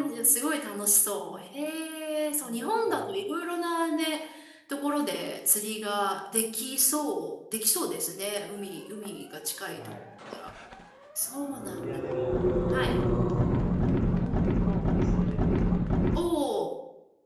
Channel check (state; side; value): identical; both; correlation 1.00